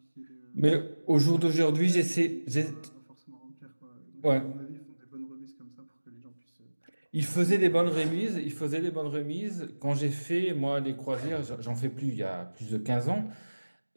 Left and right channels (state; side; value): inverted; both; correlation -1.00